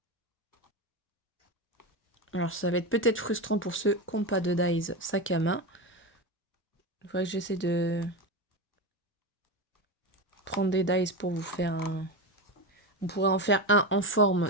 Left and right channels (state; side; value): normal; both; correlation 0.18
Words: Alors, ça va être peut-être frustrant pour ceux qui n'ont pas de Dies sac à main. Il faudrait que j'essaie de prendre des Dies pour vous faire un... On pourrait en faire un en forme